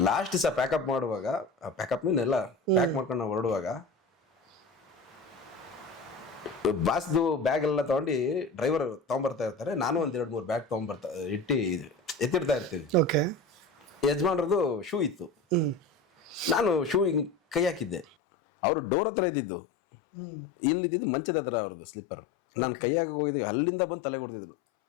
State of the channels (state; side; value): drops out; right; at 18.1 s